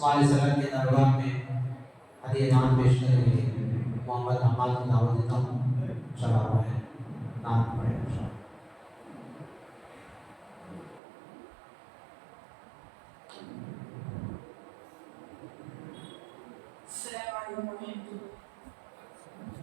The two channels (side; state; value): left; drops out; at 11.0 s